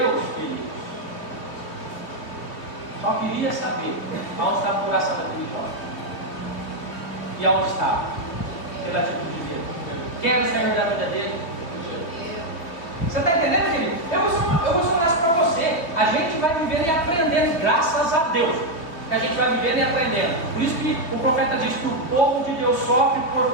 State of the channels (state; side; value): late; right; 3.0 ms